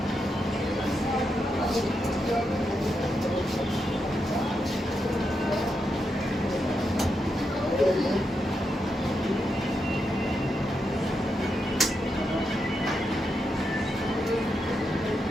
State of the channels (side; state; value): both; normal; correlation 0.84